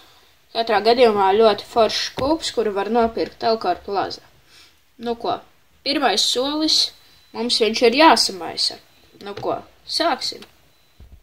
Katrā gadījumā ļoti foršs skūps, kuru var nopirkt Elkar Plaza. Nu ko, pirmais solis. Mums viņš ir jāsamaisa. Nu ko, sāksim.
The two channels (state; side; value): identical; both; correlation 1.00